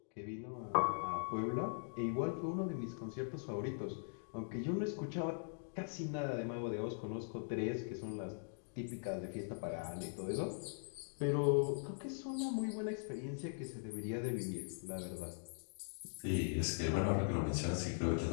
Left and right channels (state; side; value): silent; right; digital silence